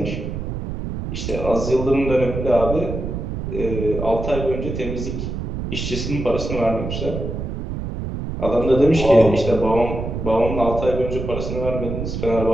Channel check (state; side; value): noise; right; rumble, 5 dB below the sound